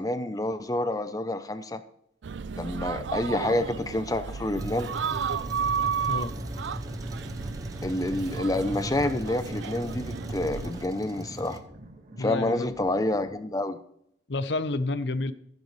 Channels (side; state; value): both; normal; correlation 0.54